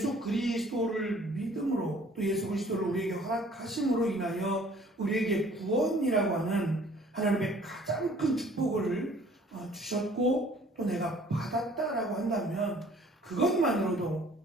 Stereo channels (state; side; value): normal; both; correlation 0.54